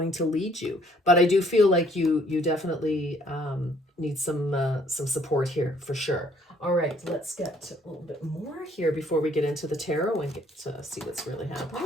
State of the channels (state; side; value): normal; both; correlation 0.62